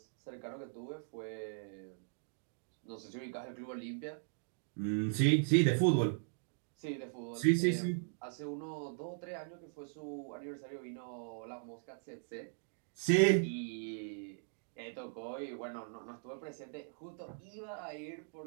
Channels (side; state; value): left; silent; digital silence